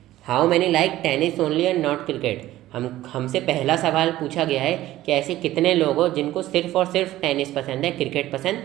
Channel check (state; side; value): quieter; left; 15.1 dB